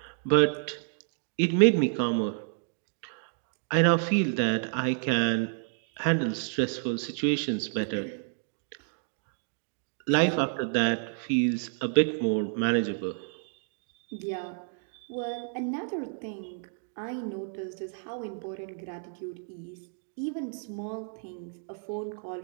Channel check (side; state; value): left; silent; 58 dB below the other